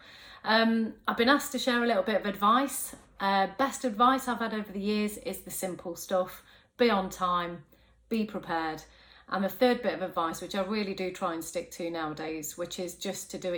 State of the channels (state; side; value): identical; both; correlation 1.00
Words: I've been asked to share a little bit of advice. Best advice I've had over the years is the simple stuff. Be on time, be prepared. And the third bit of advice, which I really do try and stick to nowadays, which is just to do